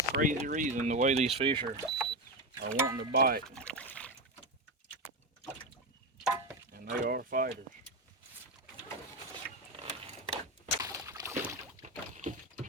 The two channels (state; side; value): normal; both; correlation 0.14